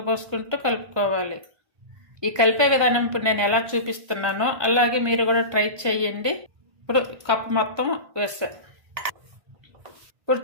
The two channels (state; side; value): late; left; 1.2 ms